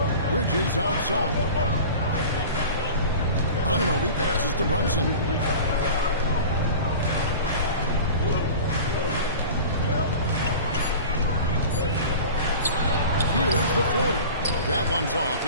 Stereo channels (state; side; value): inverted; both; correlation -0.37